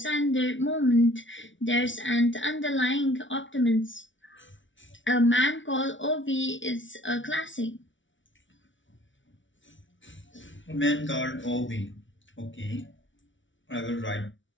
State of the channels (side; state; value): right; late; 0.56 ms